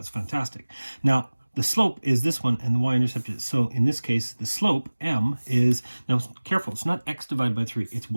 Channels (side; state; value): both; inverted; correlation -1.00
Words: fantastic. Now, the slope is this one, and the y-intercept is, so in this case, the slope, m, is, now careful, it's not x divided by 3, it's